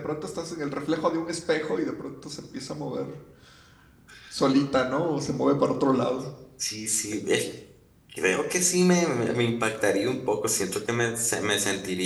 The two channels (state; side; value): identical; both; correlation 1.00